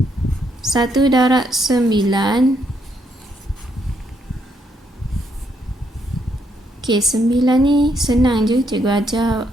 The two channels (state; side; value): normal; both; correlation 0.75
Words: 1 darab 9. Okey, 9 ni senang je. Cikgu ajar